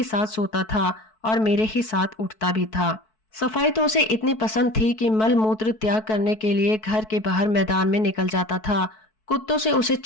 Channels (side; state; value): right; late; 4.6 ms